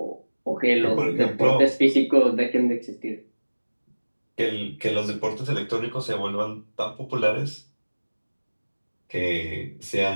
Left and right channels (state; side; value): inverted; both; correlation -1.00